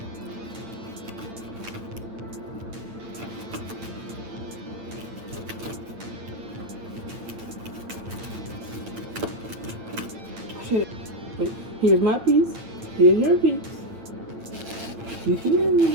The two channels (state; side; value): late; left; 8.9 ms